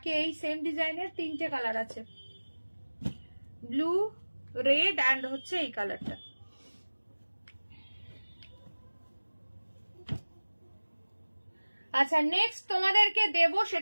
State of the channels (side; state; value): both; inverted; correlation -1.00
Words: এই সেম ডিজাইনের তিনটে কালার আছে, ব্লু, রেড অ্যান্ড হচ্ছে এই কালারটা। আচ্ছা নেক্সট তোমাদেরকে দেব,